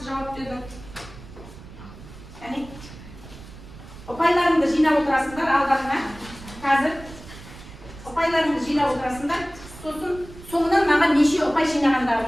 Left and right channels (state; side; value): noise; right; rumble, 17 dB below the sound